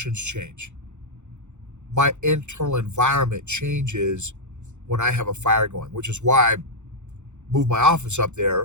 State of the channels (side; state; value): left; late; 0.83 ms